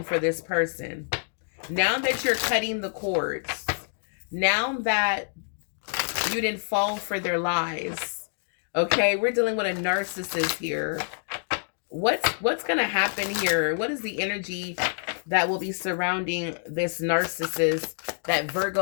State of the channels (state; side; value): silent; right; digital silence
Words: for this person. Now that you're cutting the cords, now that you didn't fall for their lies. Okay, we're dealing with a narcissist here. What's gonna happen here? What is the energy that will be surrounding this narcissist that